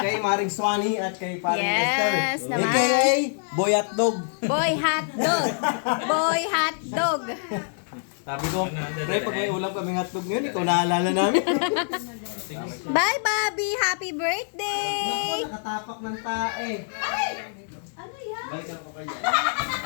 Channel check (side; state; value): right; silent; 61 dB below the other